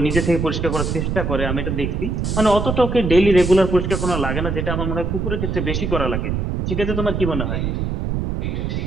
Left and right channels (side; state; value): right; noise; rumble, 1 dB below the sound